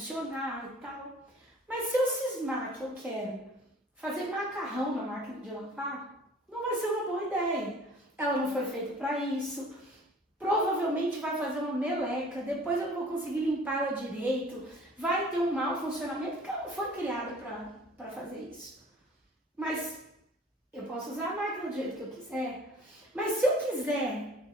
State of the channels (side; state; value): both; normal; correlation 0.49